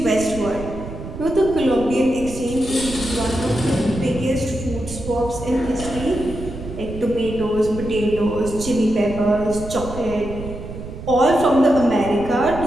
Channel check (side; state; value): right; noise; rumble, 10 dB below the sound